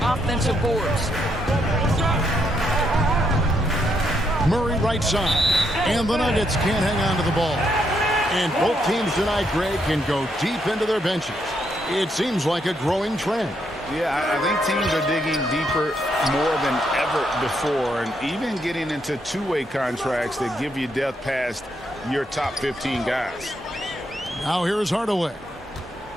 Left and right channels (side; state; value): both; normal; correlation 0.77